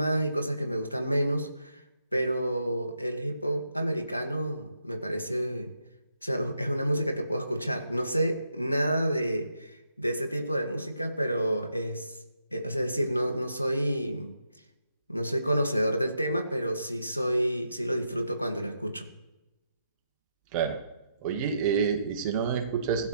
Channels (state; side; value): inverted; both; correlation -0.80